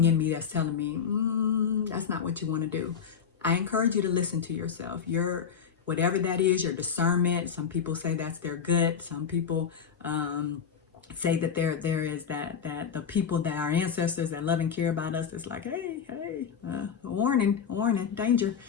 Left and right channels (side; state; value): right; quieter; 7.1 dB